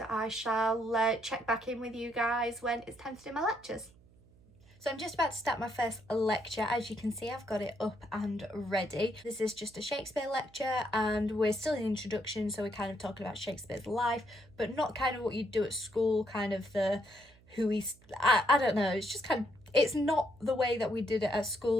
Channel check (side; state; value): right; noise; hum, 27 dB below the sound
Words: I shall check back in with you guys when it's time to do my lectures. So I'm just about to start my first lecture. As you can see, I've got it up and ready. This is just a Shakespeare lecture, and we're still in introduction, so we're kind of talking about Shakespeare's life, but not kind of what you do at school, kind of the who he's, I don't know, it's just kind of, it's not the way that we did it at